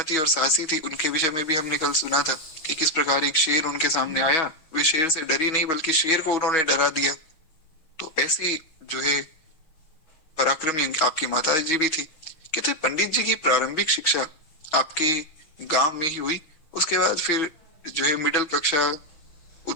और साहसी थी। उनके विषय में भी हमने कल सुना था कि किस प्रकार एक शेर उनके सामने आया, वे शेर से डरी नहीं बल्कि शेर को उन्होंने डरा दिया। तो ऐसी जो है पराक्रमी आपकी माता जी भी थी। कहते पंडित जी की प्रारंभिक शिक्षा आपके गांव में ही हुई, उसके बाद फिर जो है मिडिल कक्षा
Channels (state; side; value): late; right; 6.3 ms